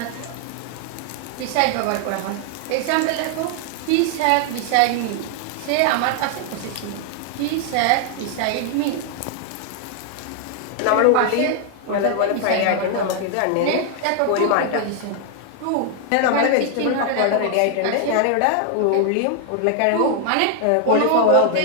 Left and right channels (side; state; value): both; different; correlation 0.00